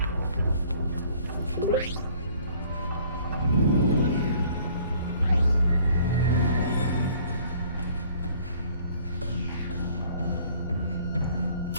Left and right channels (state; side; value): inverted; both; correlation -0.56